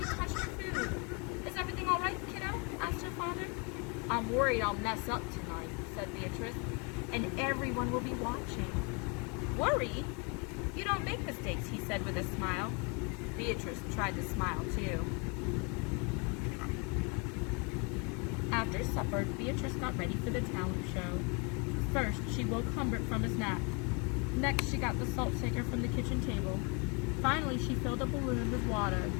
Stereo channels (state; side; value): quieter; right; 32.8 dB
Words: touched her food. "Is everything all right, kiddo?" asked her father. "I'm worried I'll mess up tonight," said Beatrice, "and everyone will be watching." "Worried? You don't make mistakes," he said with a smile. Beatrice tried to smile too. After supper, Beatrice got ready for the talent show. First, she woke Humbert from his nap. Next, she got the salt shaker from the kitchen table. Finally, she filled a balloon with water.